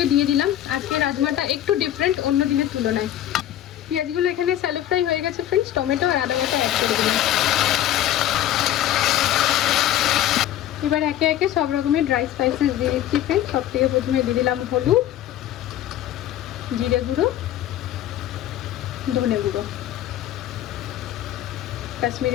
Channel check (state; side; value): quieter; right; 12.3 dB